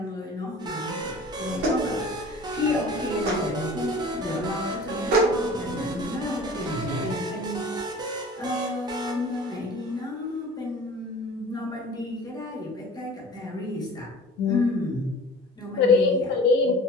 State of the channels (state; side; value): normal; both; correlation 0.43